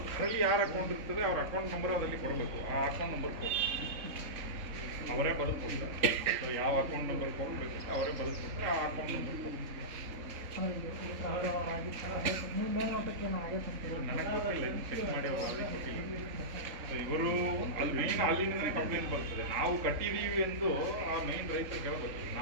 ಅದರಲ್ಲಿ ಯಾರು ಅಕೌಂಟ್ ಇರ್ತದೆ ಅವ್ರ ಅಕೌಂಟ್ ನಂಬರ್ ಅದರಲ್ಲಿ ಕೊಡಬೇಕು. ಆ ಅಕೌಂಟ್ ನಂಬರ್ ಅವರೇ ಬದುಕೊಡ್ತಾರೆ. ಯಾವ ಅಕೌಂಟ್ ನಂಬರ್ ಕೊಡಬೇಕು ಅವರೇ ಬದುಕೊಡ್ತಾರೆ. ಆ ಅಕೌಂಟ್ ನಂಬರ್ ನನಗೆ ಗೊತ್ತಿಲ್ಲ, ಇನ್ನು ಚೆಕ್ ಮಾಡಿ ಅವರು ಅಲ್ಲಿ ಕೊಟ್ಟಿಲ್ಲ. ಸೊ ಇವರು ಅಲ್ಲಿ ಮೇನ್ ಅಲ್ಲಿಂದನೇ ಕಂಪ್ಲೇಂಟ್ ಬರ್ತದೆ. ನಾವು ಕಟ್ಟಿದ್ದೀವಿ ಎಂದು ಆ ಮೇನ್ ರೈತರು ಕೇಳಬೇಕು.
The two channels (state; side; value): late; left; 3.8 ms